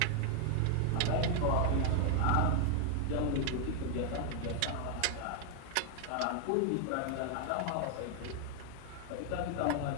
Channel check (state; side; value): different; both; correlation 0.00